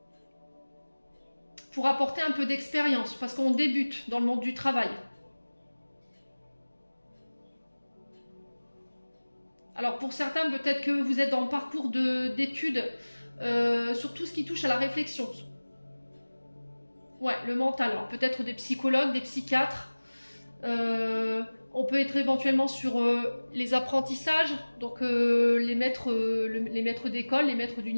pour apporter un peu d'expérience, parce qu'on débute dans le monde du travail. Alors pour certains, peut-être que vous êtes dans le parcours d'études sur tout ce qui touche à la réflexion. Ouais, le mental. Alors peut-être des psychologues, des psychiatres. On peut être éventuellement sur les apprentissages, donc les maîtres d'école, les maîtres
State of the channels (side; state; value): both; inverted; correlation -1.00